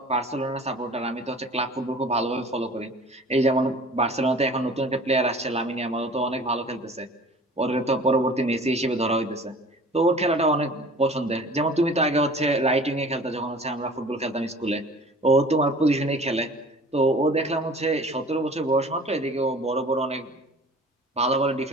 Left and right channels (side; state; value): both; normal; correlation 0.45